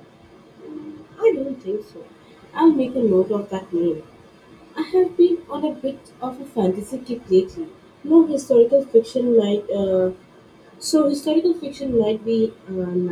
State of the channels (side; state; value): both; identical; correlation 1.00